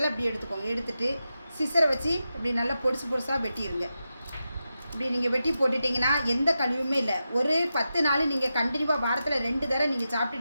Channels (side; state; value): both; inverted; correlation -0.90